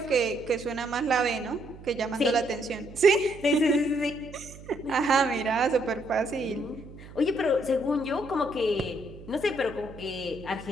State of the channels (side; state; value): right; noise; hum, 17 dB below the sound